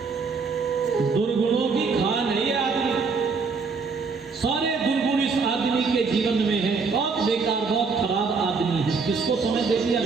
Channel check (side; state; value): left; quieter; 4.7 dB